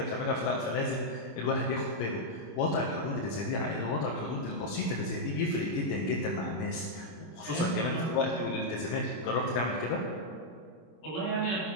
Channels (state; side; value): late; right; 26 ms